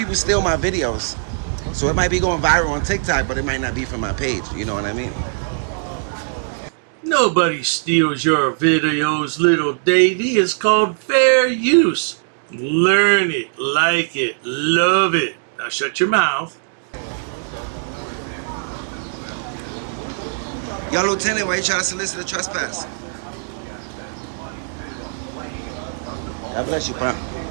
steal my videos. So it might be going viral on TikTok, but it might not be from my page. You know what I mean? Nobody steals your videos, little Davey. It's called fair use. Learn it, like it, love it. Now shut your mouth. Yo, Lieutenant, why you trying to solicit a trespass? God bless you, bro.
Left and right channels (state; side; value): silent; left; digital silence